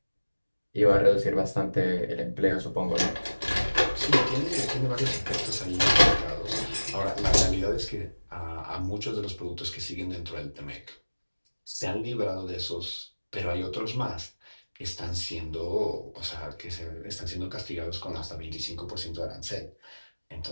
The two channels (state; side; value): inverted; both; correlation -1.00